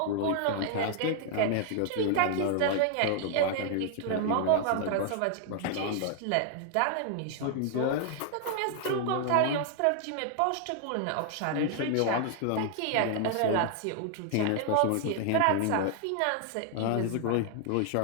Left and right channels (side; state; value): both; different; correlation 0.00